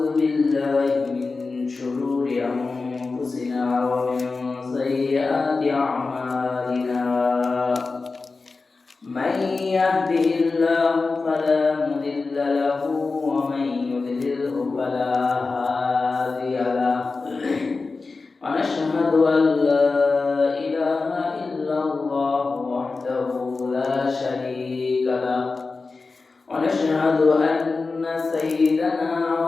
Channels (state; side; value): quieter; right; 4.0 dB